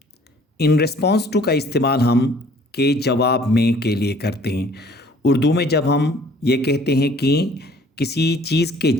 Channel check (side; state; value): both; normal; correlation 0.55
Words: In response to का इस्तेमाल हम के जवाब में के लिए करते हैं। उर्दू में जब हम ये कहते हैं कि किसी चीज़ के